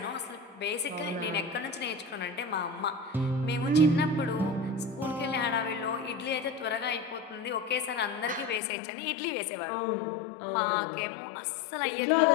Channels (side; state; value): right; drops out; at 8.6 s